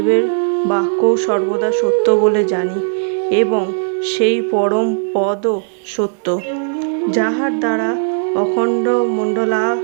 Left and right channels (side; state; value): left; silent; 60 dB below the other